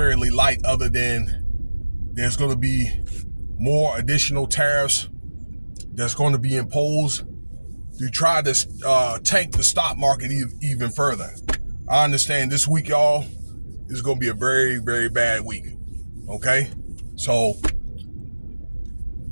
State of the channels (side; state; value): both; inverted; correlation -1.00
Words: light, other than there's going to be more additional tariffs that's going to be imposed to try to tank the stock market even further. I understand this week, y'all, is going to be a very, very bad week. Okay? So